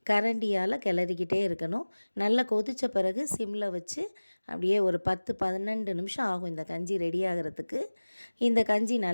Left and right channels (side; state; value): both; inverted; correlation -1.00